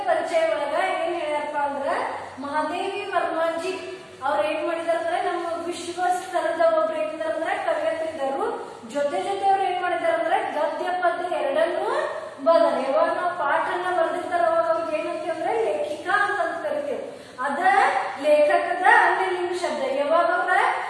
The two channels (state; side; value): identical; both; correlation 1.00